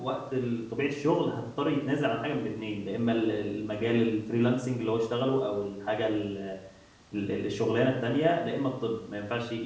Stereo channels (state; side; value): identical; both; correlation 1.00